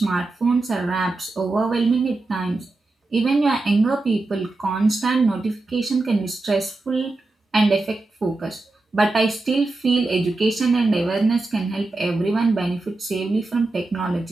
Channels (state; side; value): quieter; left; 3.2 dB